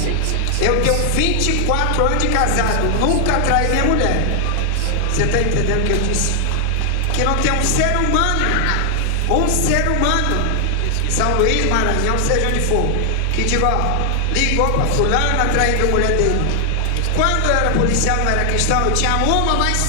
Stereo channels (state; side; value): different; both; correlation 0.00